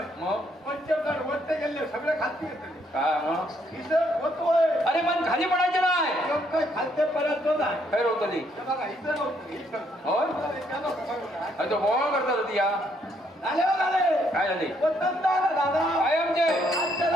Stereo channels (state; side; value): normal; both; correlation 0.71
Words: मग पंचमदार वरते गेले सगळे खालती येते काय मग हिसाब होतोय अरे पण खाली पडायचं नाही काय खाद्य परत नाही खैर होतं ती बघा इथं नव्हतं होय अरे तो बोळ करतात होती या झाले काय झाले दादा काय आमचे आज